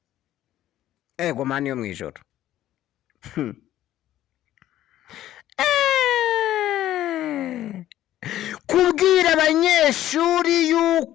Ego mani yo mu ijoro. Kubwira abanyeshuri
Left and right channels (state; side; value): quieter; right; 13.2 dB